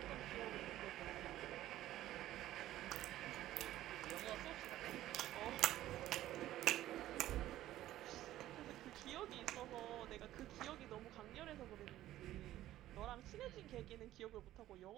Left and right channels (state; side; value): quieter; left; 14.1 dB